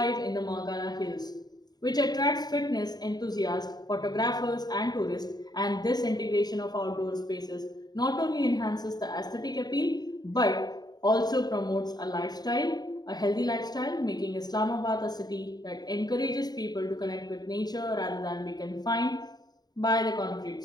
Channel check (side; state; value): right; late; 0.20 ms